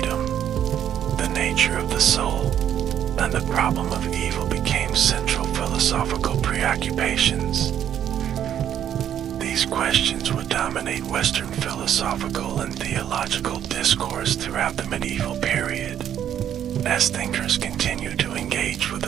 the nature of the soul, and the problem of evil became central philosophical preoccupations. These questions would dominate Western philosophical and theological discourse throughout the medieval period, as thinkers continued to engage with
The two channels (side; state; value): left; quieter; 10.0 dB